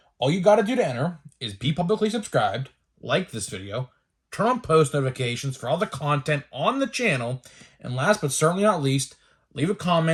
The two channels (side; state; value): both; identical; correlation 1.00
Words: All you got to do to enter is be publicly subscribed, like this video, turn on post notifications for all the content on the channel, and last but certainly not least, leave a